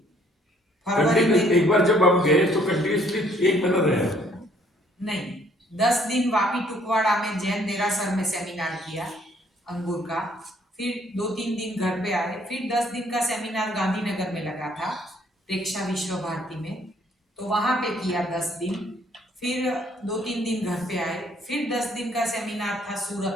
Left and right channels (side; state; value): both; normal; correlation 0.63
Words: फरवरी में एक बार जब हम गए तो कंटिन्यूसली 1 महीना रहे? नहीं 10 दिन वापी टुकवाड़ा में जैन देरासर में सेमिनार किया अंगूर का, फिर 2-3 दिन घर पे आए, फिर 10 दिन का सेमिनार गांधीनगर में लगा था प्रेक्षा विश्व भारती में, तो वहां पे किया 10 दिन, फिर 2-3 दिन घर पे आए, फिर 10 दिन का सेमिनार था